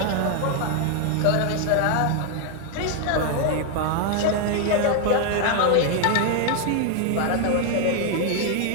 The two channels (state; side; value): different; both; correlation 0.00